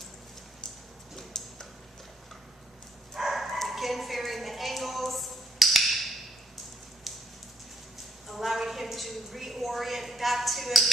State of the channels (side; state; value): both; normal; correlation 0.68